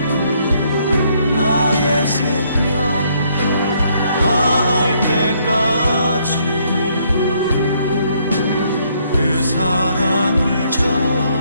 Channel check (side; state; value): both; inverted; correlation -0.69